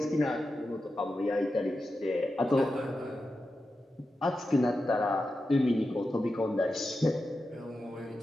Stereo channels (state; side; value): normal; both; correlation 0.90